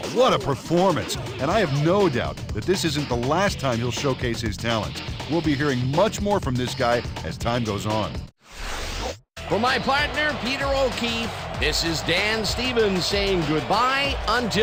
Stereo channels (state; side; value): identical; both; correlation 1.00